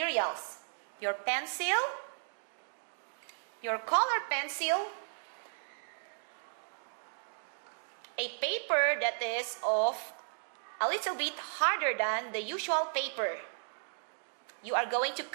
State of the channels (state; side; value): silent; left; digital silence